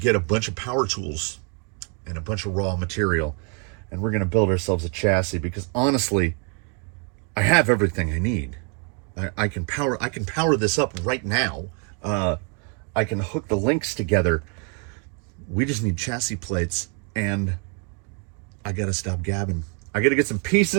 a bunch of power tools and a bunch of raw material, and we're going to build ourselves a chassis, because honestly, I have everything I need. I can power this up right now. I can hook the links together. We just need chassis plates, and I got to stop gabbing. I got to get some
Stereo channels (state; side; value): quieter; left; 38.3 dB